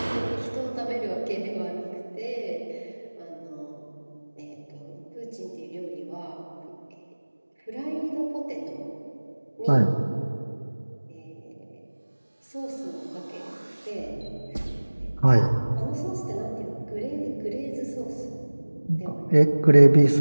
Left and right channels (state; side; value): inverted; both; correlation -1.00